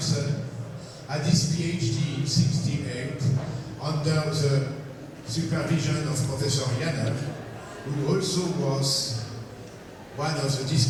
had his PhD in '68 under the supervision of Professor Janssen, who also was one of the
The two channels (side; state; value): both; identical; correlation 1.00